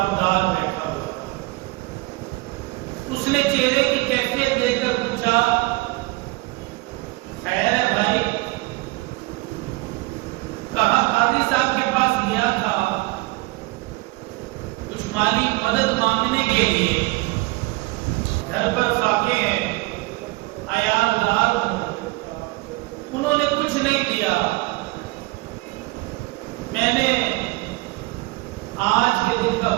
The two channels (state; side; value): quieter; left; 23.0 dB